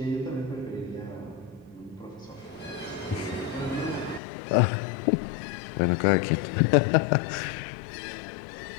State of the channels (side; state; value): right; drops out; at 4.2 s